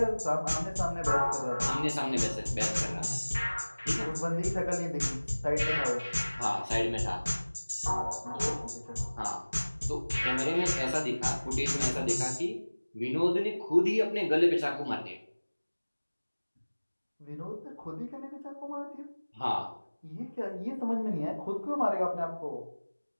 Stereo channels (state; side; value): inverted; both; correlation -1.00